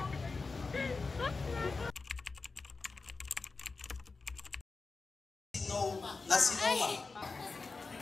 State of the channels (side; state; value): right; quieter; 4.1 dB